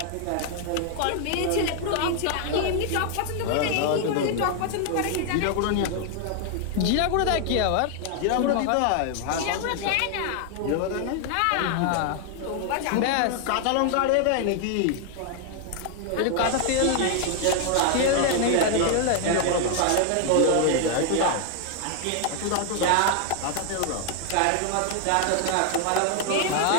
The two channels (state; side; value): different; both; correlation 0.00